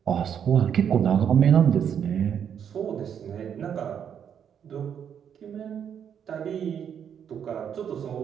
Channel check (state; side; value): quieter; left; 8.3 dB